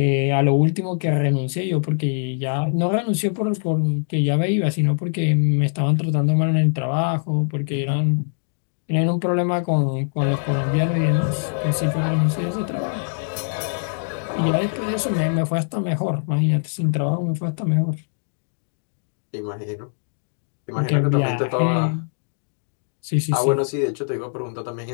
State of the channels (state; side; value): silent; right; digital silence